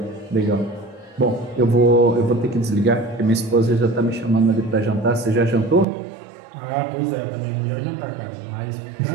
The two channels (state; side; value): drops out; left; at 5.9 s